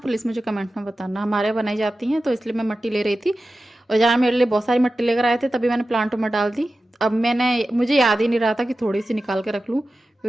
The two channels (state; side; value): normal; both; correlation 0.94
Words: मुझे कमेंट में बताना। हमारे बनाई जाती हैं तो इसलिए मैं मिट्टी ले रही थी। और जहाँ मेरे लिए बहुत सारी मिट्टी लेकर आए थे तभी मैंने प्लांटों में डाल दी। अब मुझे याद ही नहीं रहा था कि थोड़ी सी निकाल के रख लूँ